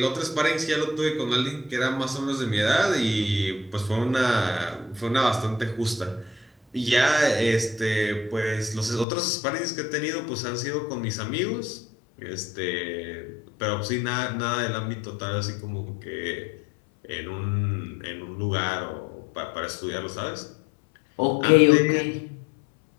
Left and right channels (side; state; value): right; drops out; at 9.1 s